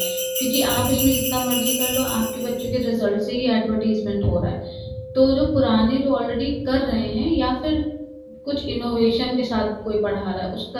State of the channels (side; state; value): both; identical; correlation 1.00